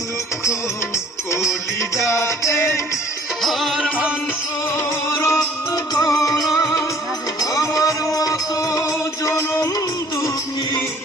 দুঃখ কলিজাতে আর মাংস রক্ত গড়াই, আমার মতো জনম দুঃখী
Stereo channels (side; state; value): both; normal; correlation 0.55